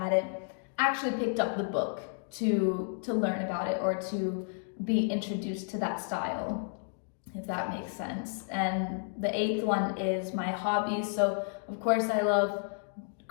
actually picked up the book to learn about it or to be introduced to that style, if that makes sense. And the 8th one is my hobbies. So of course I love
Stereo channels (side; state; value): right; silent; digital silence